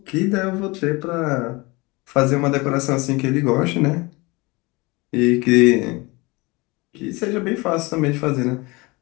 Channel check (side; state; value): right; quieter; 24.8 dB